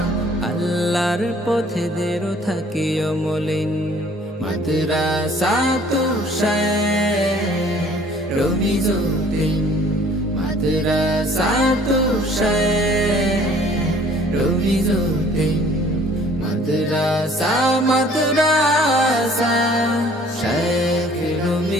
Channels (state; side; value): normal; both; correlation 0.55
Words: আল্লাহর পথে দেরো থাকি অমলিন, মাদ্রাসাতু শাইখ রমিজউদ্দিন, মাদ্রাসাতু শাইখ রমিজউদ্দিন। মাদ্রাসা মাদ্রাসা শাইখ